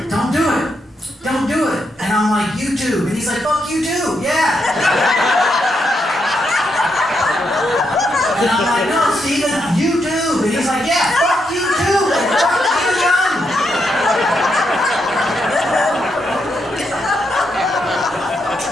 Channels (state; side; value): normal; both; correlation 0.81